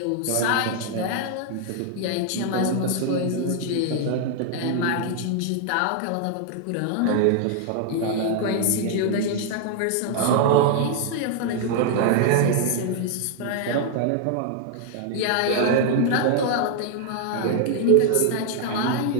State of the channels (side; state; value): both; different; correlation 0.00